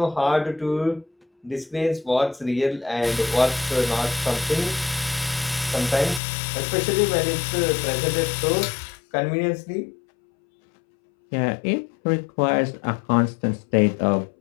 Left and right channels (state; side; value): drops out; right; at 6.2 s